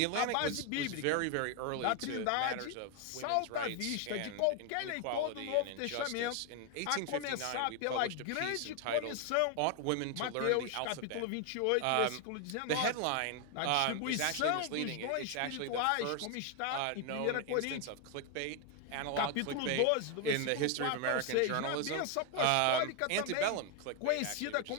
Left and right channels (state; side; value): different; both; correlation 0.01